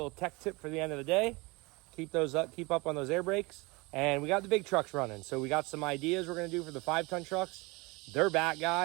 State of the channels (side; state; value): left; quieter; 25.3 dB